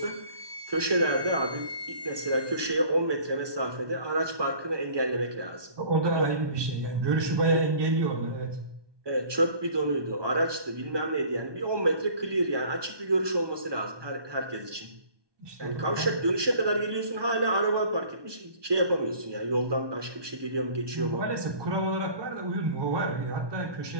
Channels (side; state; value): left; late; 1.2 ms